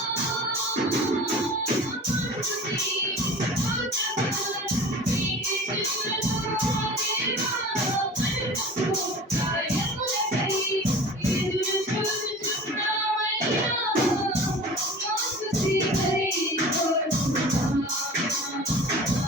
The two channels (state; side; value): normal; both; correlation 0.39